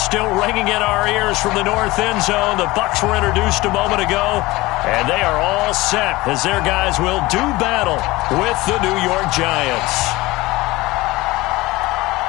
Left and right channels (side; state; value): right; quieter; 20.3 dB